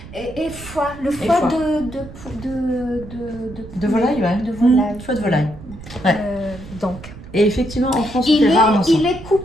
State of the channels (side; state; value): right; noise; rumble, 15 dB below the sound